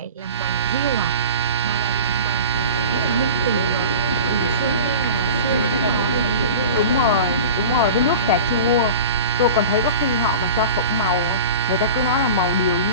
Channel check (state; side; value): inverted; both; correlation -0.36